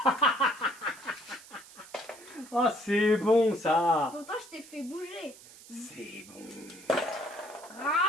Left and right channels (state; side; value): noise; right; hiss, 20 dB below the sound